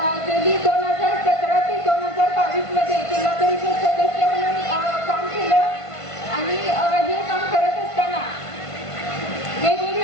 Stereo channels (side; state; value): right; late; 1.5 ms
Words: गेली 2017 ते 2022 मध्ये जिल्हा परिषद सदस्य म्हणून काम केलं. आणि हे काम करत असताना